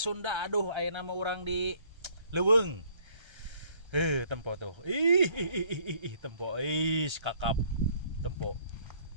Aduh, aya nama orang di Leuweung. Tempo tuh. Tempo. Kakap. Tempo.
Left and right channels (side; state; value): left; late; 1.3 ms